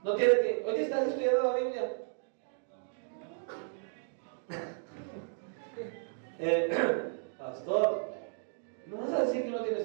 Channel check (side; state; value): left; silent; 55 dB below the other